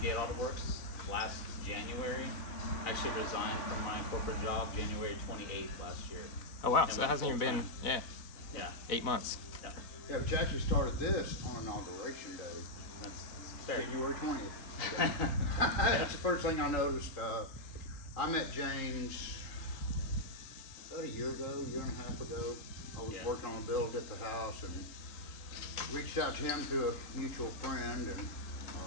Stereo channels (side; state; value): right; late; 3.5 ms